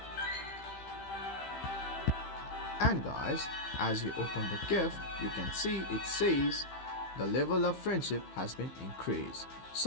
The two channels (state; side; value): late; right; 15 ms